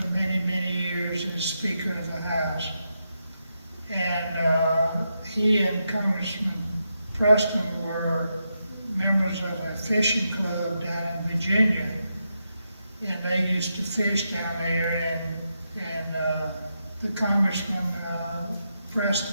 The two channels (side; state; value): both; inverted; correlation -0.85